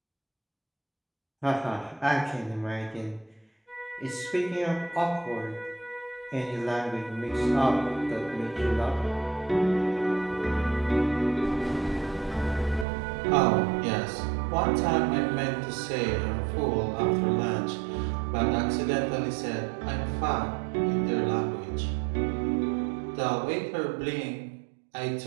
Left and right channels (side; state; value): left; drops out; at 12.9 s